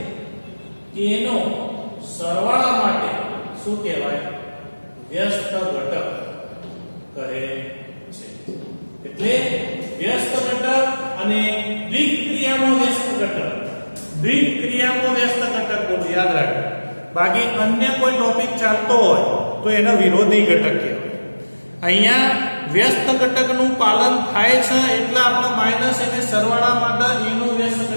એનો સરવાળા માટે શું કહેવાય વ્યસ્ત ઘટક કહે છે. એટલે વ્યસ્ત ઘટક અને દ્વિક ક્રિયામાં વ્યસ્ત ઘટક દ્વિક ક્રિયામાં વ્યસ્ત ઘટક બોલો યાદ રાખો. બાકી અન્ય કોઈ ટોપિક ચાલતો હોય તો એનો વિરોધી ઘટક કહેવાય. અહીંયા વ્યસ્ત ઘટકનું પાલન થાય છે એટલે આપણે માઈનસ એને સરવાળા માટે એનું વ્યસ્ત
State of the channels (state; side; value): inverted; both; correlation -1.00